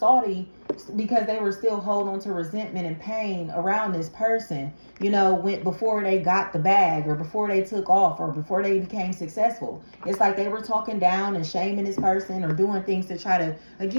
because they were still holding on to resentment and pain around this person, you know, before they got the bag, or before they took off, or before they became successful. It's like they were talking down and shaming this person, or doing things to try to,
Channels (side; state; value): both; inverted; correlation -1.00